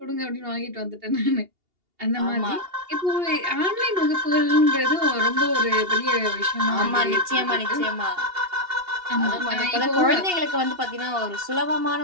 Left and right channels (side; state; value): left; late; 2.8 ms